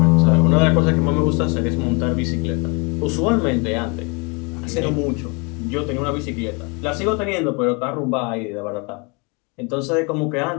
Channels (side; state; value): right; quieter; 31.4 dB